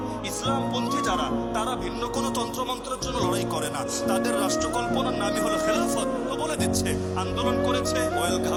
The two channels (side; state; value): both; identical; correlation 1.00